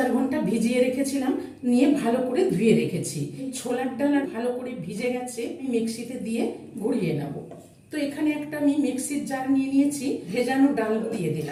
ঘন্টা ভিজিয়ে রেখেছিলাম, নিয়ে ভালো করে ধুয়ে রেখেছি। ছোলার ডাল আর ভালো করে ভিজে গেছে, আমি মিক্সিতে দিয়ে ঘুরিয়ে নেব। তো এখানে একটা আমি মিক্সির জার নিয়ে নিয়েছি, ভেজানো ডাল দিয়ে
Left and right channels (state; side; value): identical; both; correlation 1.00